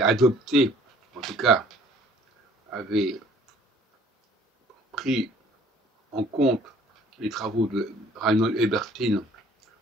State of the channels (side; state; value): both; normal; correlation 0.55